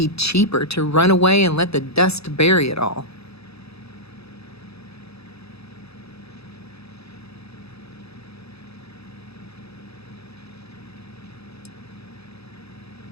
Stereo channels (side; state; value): right; late; 0.78 ms